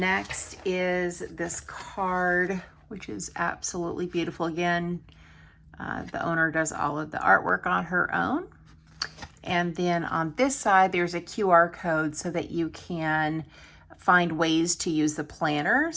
is this card, which is absolutely beautiful. Again, the owner does all of the artwork on her own. And then on this side, there's a QR code so that you can find ways to use the planner.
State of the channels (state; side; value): identical; both; correlation 1.00